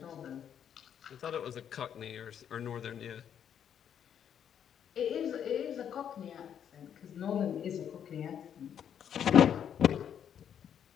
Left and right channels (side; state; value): right; quieter; 8.8 dB